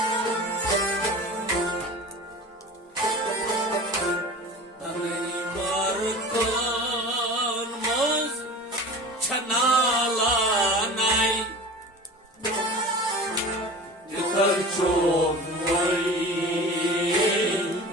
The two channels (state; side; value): normal; both; correlation 0.36